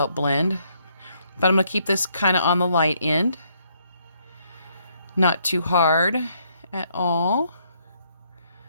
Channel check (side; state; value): both; inverted; correlation -0.71